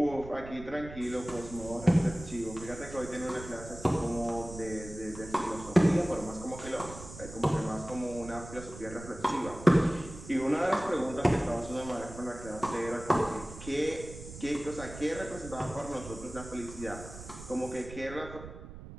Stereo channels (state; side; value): noise; right; rumble, 13 dB below the sound